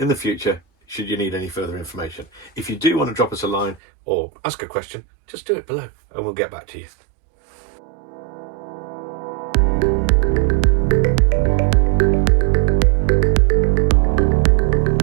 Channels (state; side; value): drops out; left; at 3.8 s